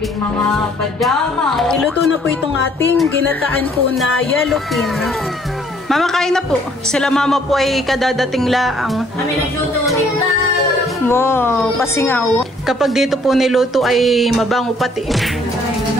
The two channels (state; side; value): normal; both; correlation 0.62